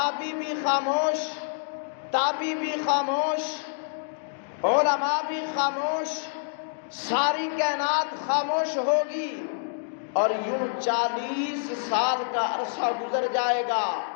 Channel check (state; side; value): silent; right; digital silence